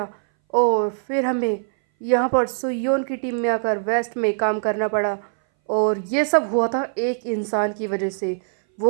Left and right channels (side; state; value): left; silent; 61 dB below the other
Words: और फिर हमें यहाँ पर सुयोन की टीम में आकर वेस्ट में काम करना पड़ा और ये सब हुआ था एक इंसान की वजह से,